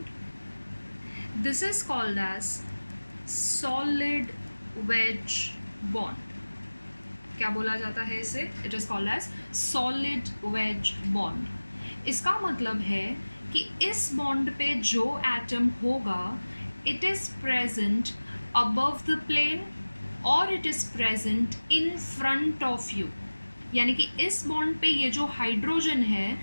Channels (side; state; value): both; inverted; correlation -1.00